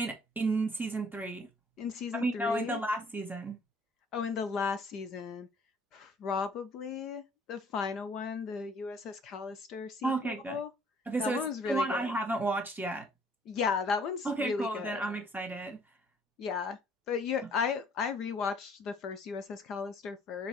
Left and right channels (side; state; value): both; normal; correlation 0.60